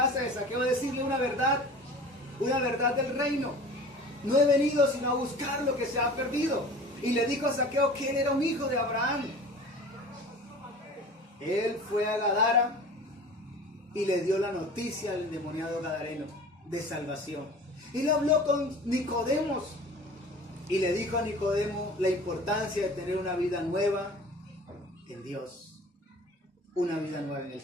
de Zaqueo a decirle una verdad del reino. No he venido sino a buscar lo que se ha perdido. Y le dijo a Zaqueo que él era un hijo de Abraham. Él fue a Gadara y le dio la noticia al endemoniado gadareno de salvación. Él habló con Nicodemos y le dijo a Nicodemo la importancia de tener una vida nueva en Dios, una vida nueva en el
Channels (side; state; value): both; normal; correlation 0.41